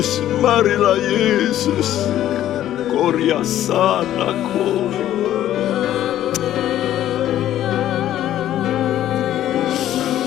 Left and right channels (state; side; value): quieter; right; 12.4 dB